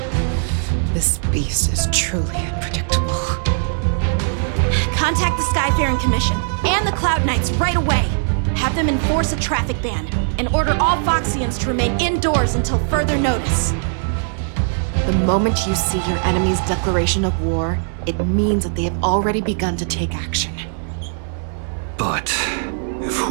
This beast is truly unpredictable. Contact the Skyfaring Commission and the Cloud Knights right away. Have them enforce a traffic ban and order all Foxians to remain indoors until further notice. The moment you see your enemy's declaration of war, it means that they have already begun to take action. But if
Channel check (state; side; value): silent; left; 61 dB below the other